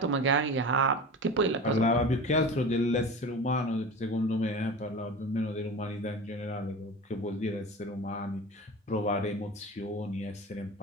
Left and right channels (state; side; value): normal; both; correlation 0.32